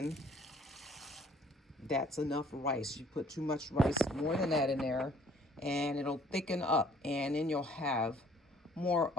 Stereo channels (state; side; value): normal; both; correlation 0.57